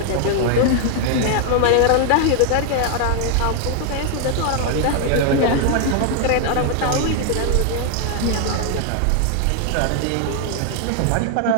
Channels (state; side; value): different; both; correlation 0.00